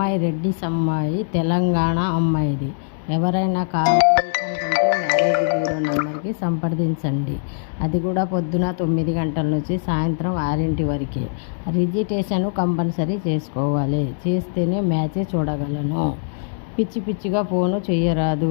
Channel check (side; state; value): right; silent; digital silence